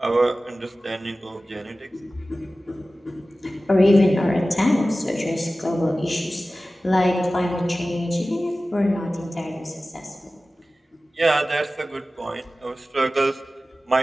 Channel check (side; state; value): both; normal; correlation 0.96